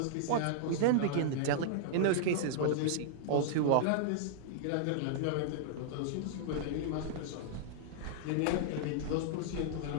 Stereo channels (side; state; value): both; different; correlation -0.01